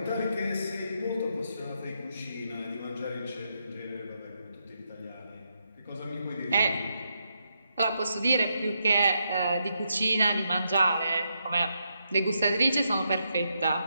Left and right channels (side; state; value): both; inverted; correlation -0.81